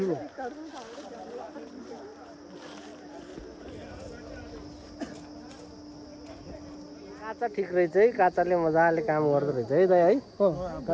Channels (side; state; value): both; identical; correlation 1.00